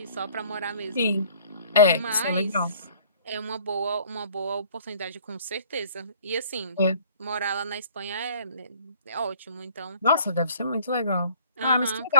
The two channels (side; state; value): both; inverted; correlation -0.53